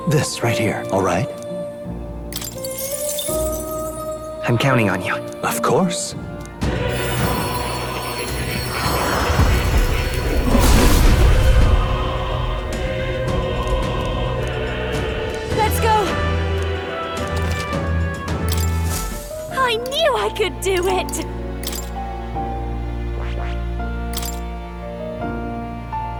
This right here, all right? I'm counting on you. Of course. Let's go! I knew I could do it!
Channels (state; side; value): identical; both; correlation 1.00